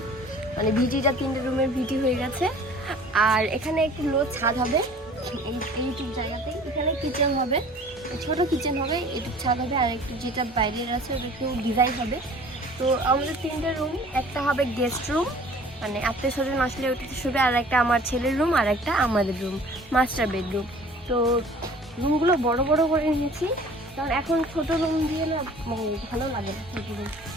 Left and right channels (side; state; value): both; normal; correlation 0.48